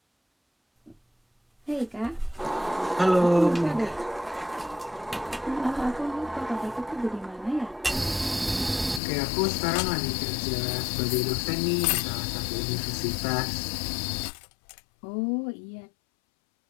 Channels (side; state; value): right; drops out; at 9.0 s